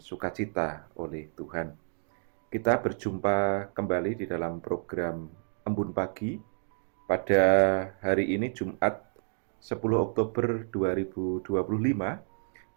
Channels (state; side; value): silent; left; digital silence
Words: sukacita oleh Tuhan. Kita berjumpa kembali di dalam program Embun Pagi pada hari ini Jumat 10 Oktober 2025